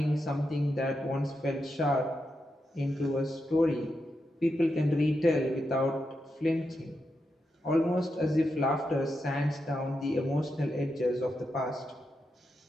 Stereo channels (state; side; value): normal; both; correlation 0.86